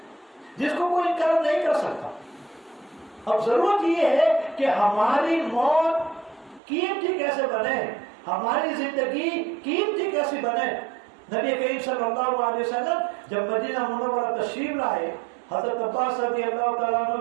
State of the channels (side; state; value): left; drops out; at 6.6 s